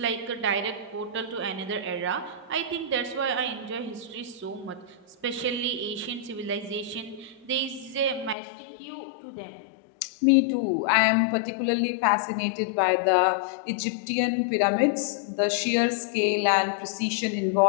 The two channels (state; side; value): drops out; right; at 8.3 s